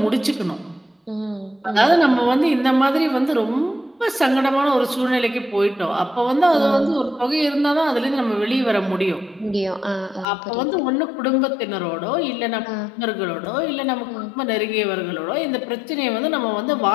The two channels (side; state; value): right; drops out; at 10.2 s